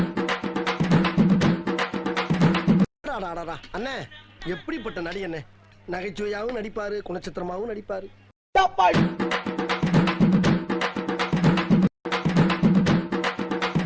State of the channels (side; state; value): both; identical; correlation 1.00